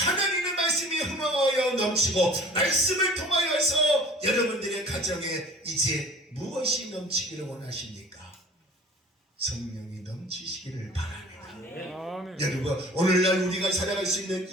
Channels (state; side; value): normal; both; correlation 0.47